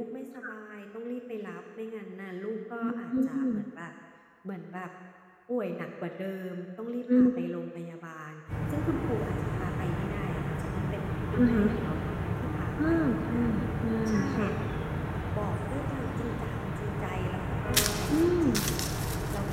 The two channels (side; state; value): both; identical; correlation 1.00